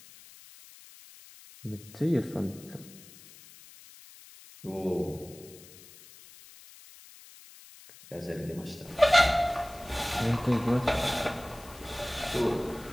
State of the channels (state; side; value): noise; left; hiss, 20 dB below the sound